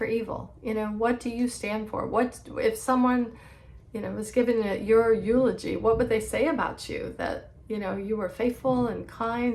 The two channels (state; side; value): identical; both; correlation 1.00